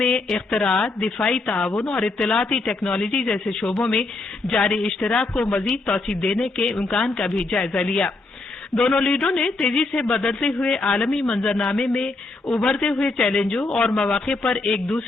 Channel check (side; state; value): right; quieter; 3.3 dB